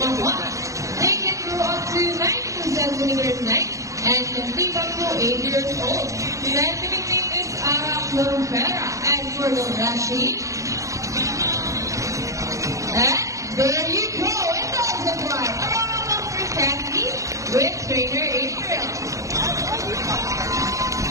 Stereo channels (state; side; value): late; left; 0.15 ms